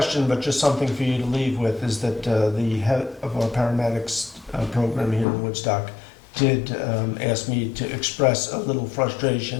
but just something for you to leave with, is that the head of our paramedics program here in Woodstock did ask me to express a little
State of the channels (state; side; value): drops out; right; at 5.2 s